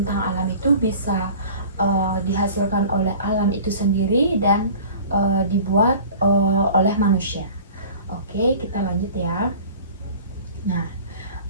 alam itu bisa dihasilkan oleh alam itu sendiri dan dibuat oleh manusia. Oke, kita lanjut ya. Nah,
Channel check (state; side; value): inverted; both; correlation -0.43